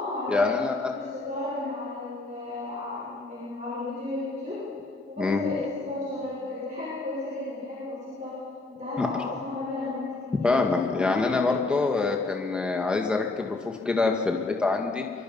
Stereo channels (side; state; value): right; quieter; 3.2 dB